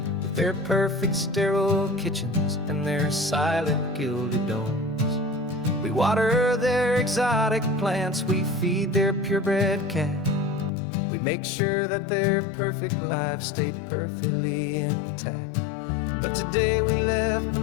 with their perfect sterile kitchens and their silent gilded domes. We water their exotic plants, we feed their purebred cat. We make sure that their perfect lives stay perfectly intact. But today we left the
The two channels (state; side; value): drops out; right; at 10.7 s